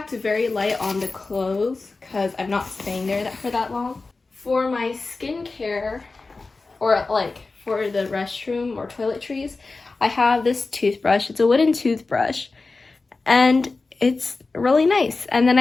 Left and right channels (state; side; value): quieter; right; 3.7 dB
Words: very light on the clothes because I'm not staying there for that long. For my skincare, or like for the restroom or toiletries, I have this toothbrush. It's a wooden toothbrush, and it's really nice. And then